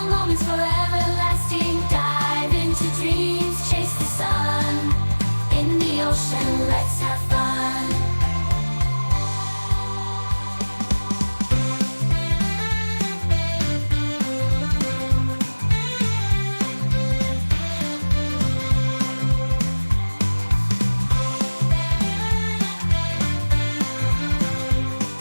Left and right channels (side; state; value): both; inverted; correlation -1.00